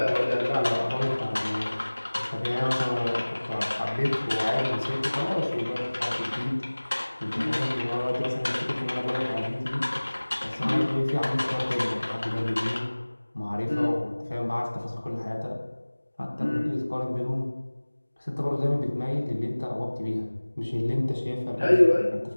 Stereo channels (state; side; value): inverted; both; correlation -1.00